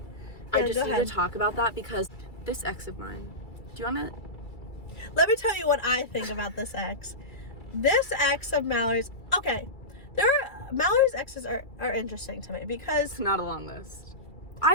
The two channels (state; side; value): late; right; 2.3 ms